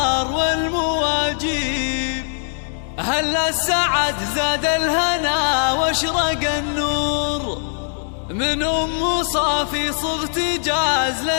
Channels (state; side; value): silent; right; digital silence